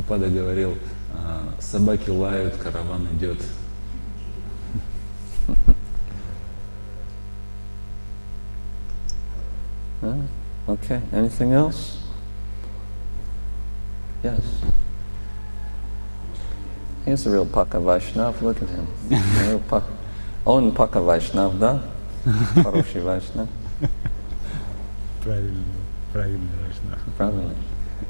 говорил: собаки лают, караван идет. Okay. Anything else? Yes. He's a real Paka Vaishnav. Look at him. Real Paka. Он Paka Vaishnav, да? Хороший Vaishnav. Правильный Vaishnav. Правильно.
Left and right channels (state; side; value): inverted; both; correlation -1.00